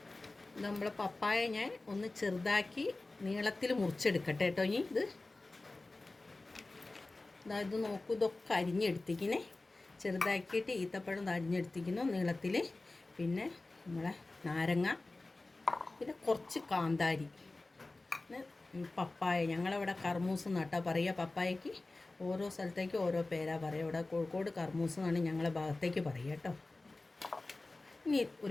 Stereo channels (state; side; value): quieter; right; 3.1 dB